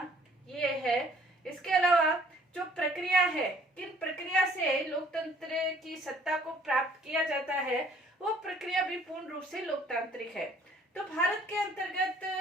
ये है। इसके अलावा जो प्रक्रिया है, किन प्रक्रिया से लोकतंत्र की सत्ता को प्राप्त किया जाता है वो प्रक्रिया भी पूर्ण रूप से लोकतांत्रिक है। तो भारत के अंतर्गत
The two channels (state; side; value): normal; both; correlation 0.59